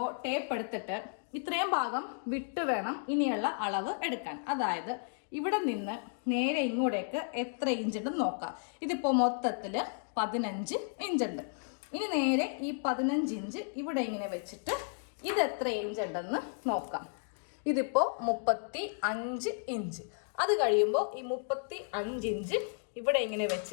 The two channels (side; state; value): right; silent; digital silence